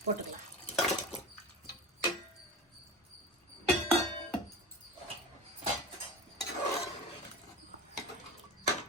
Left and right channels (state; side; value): normal; both; correlation 0.29